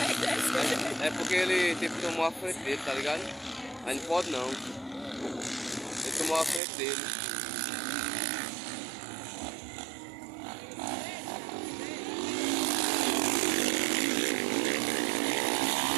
É porque ele tipo tomou a frente dele, tá ligado? Aí não pode não. Ele tomou a frente dele.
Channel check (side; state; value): left; drops out; at 6.6 s